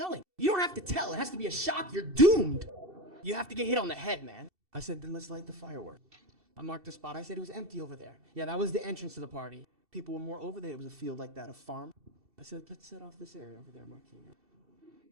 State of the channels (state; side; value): late; left; 2.7 ms